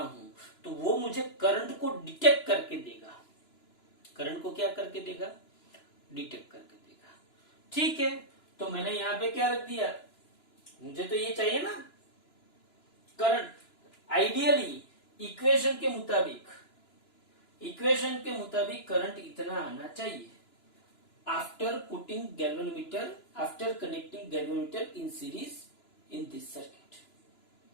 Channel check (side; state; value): right; late; 2.9 ms